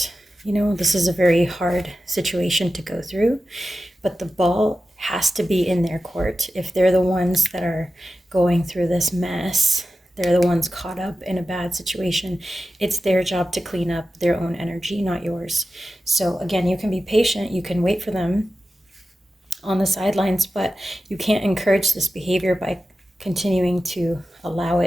You know, this is a very hard situation to go through, but the ball has to be in their court. If they're the ones that are going through this mess, they're the ones caught up in a bad situation, it's their job to clean up their own energy, not yours. So again, you can be patient, you can wait for them on the sidelines, but you can't encourage this behavior by continuing to allow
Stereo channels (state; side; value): normal; both; correlation 0.93